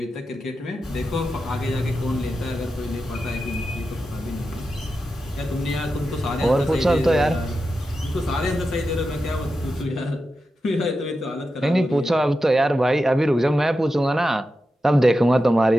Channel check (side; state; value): both; normal; correlation 0.90